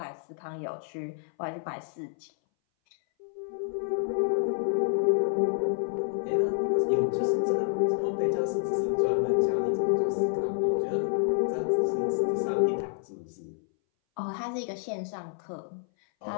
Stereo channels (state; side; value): silent; right; 59 dB below the other